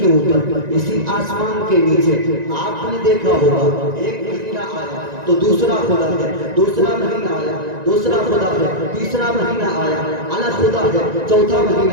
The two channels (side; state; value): left; late; 1.9 ms